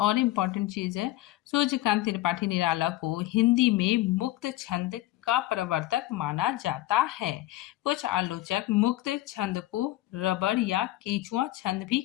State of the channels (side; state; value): right; quieter; 16.4 dB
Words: इम्पोर्टेंट चीज है। सूर्यकांत त्रिपाठी निराला को हिंदी में मुक्त छंद का प्रवर्तक माना जाता है। कुछ आलोचक मुक्त छंद को रबड़ या केचुआ छंद भी